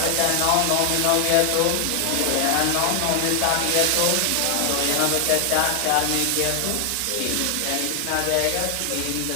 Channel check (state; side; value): different; both; correlation 0.00